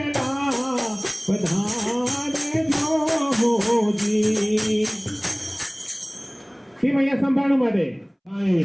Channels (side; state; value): both; identical; correlation 1.00